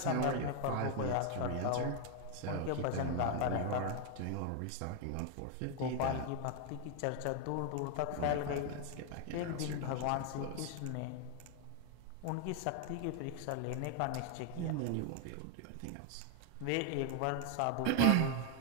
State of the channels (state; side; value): different; both; correlation 0.00